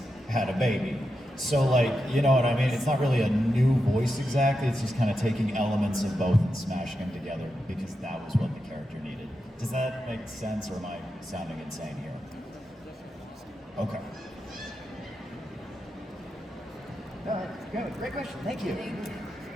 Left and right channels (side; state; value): both; normal; correlation 0.88